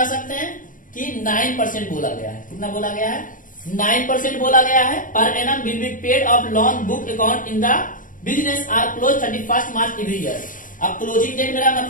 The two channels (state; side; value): late; right; 0.39 ms